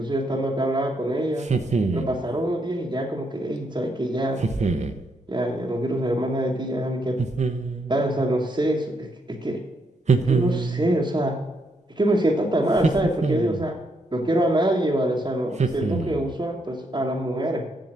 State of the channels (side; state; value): both; normal; correlation 0.77